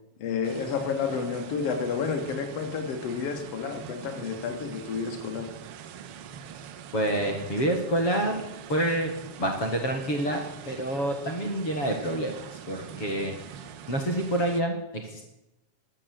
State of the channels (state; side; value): late; right; 7.2 ms